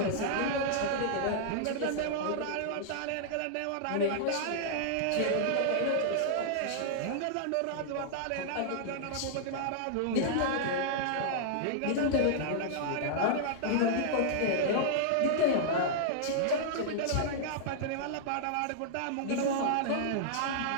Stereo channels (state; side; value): different; both; correlation -0.01